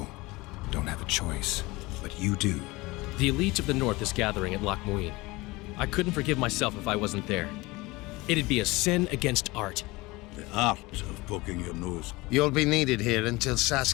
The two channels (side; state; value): right; quieter; 22.2 dB